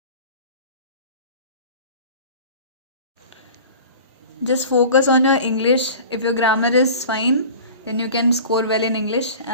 Just focus on your English. If your grammar is fine, then you can score well in English,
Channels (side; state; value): both; inverted; correlation -0.40